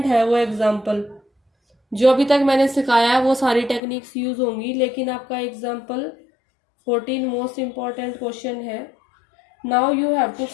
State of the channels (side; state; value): right; drops out; at 3.8 s